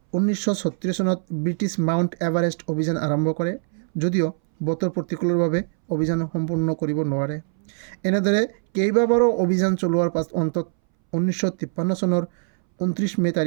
1936 চনত ব্ৰিটিছ মাউণ্ট এভাৰেষ্ট অভিযান আৰম্ভ কৰে, যদিও বতৰ প্ৰতিকূলৰ বাবে অভিযান সম্পূৰ্ণ কৰিব নোৱাৰে। এনেদৰে কেইবাবাৰো অভিযান চলোৱাৰ পাছত অন্তত 1953 চনৰ 29 মে'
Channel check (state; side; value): silent; left; 62 dB below the other